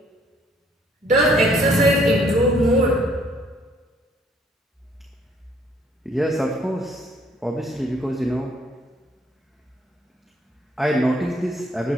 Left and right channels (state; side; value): normal; both; correlation 0.63